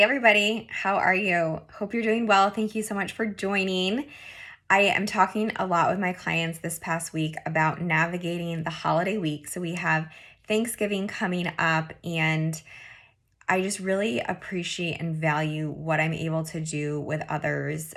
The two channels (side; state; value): both; identical; correlation 1.00